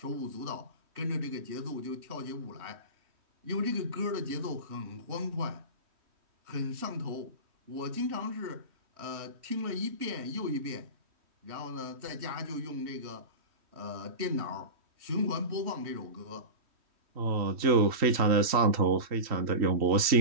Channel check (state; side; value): late; left; 3.1 ms